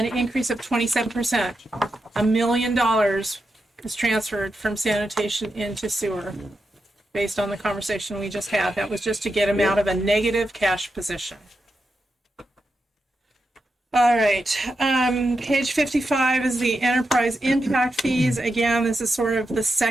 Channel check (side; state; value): both; normal; correlation 0.87